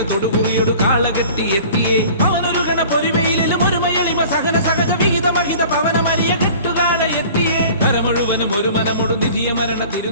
തൊടുകുറിയൊടു കാളകെട്ടി എത്തിയേ അവനൊരു ഗണ പൊരിവയിലും ഒരു മയളിമ സഹന സഹജ വിഹിത മഹിത പവന മരിയ കെട്ടുകാള എത്തിയേ മുഴുവനും ഒരു മനമൊടു നിധിയ മരണ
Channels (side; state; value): both; inverted; correlation -0.45